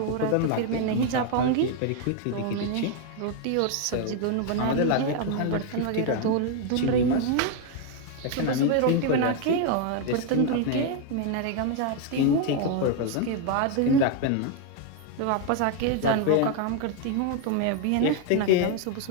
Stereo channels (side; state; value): both; different; correlation 0.01